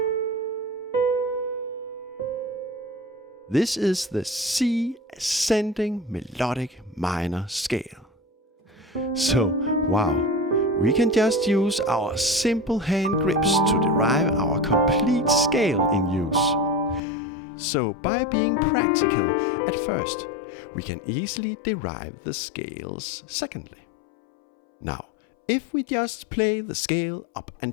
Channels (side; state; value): right; drops out; at 17.0 s